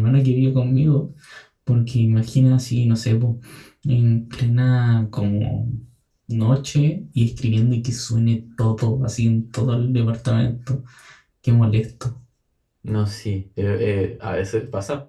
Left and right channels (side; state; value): both; identical; correlation 1.00